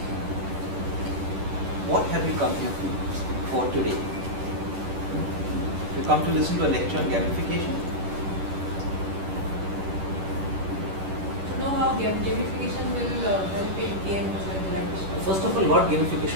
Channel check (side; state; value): left; late; 10 ms